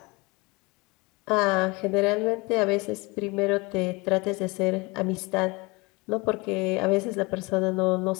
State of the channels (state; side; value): quieter; right; 25.9 dB